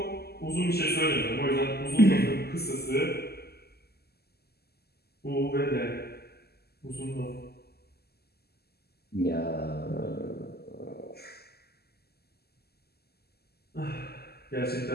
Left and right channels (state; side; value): late; right; 0.46 ms